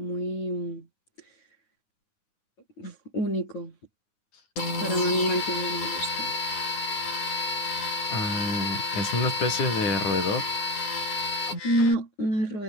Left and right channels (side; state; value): right; late; 9.5 ms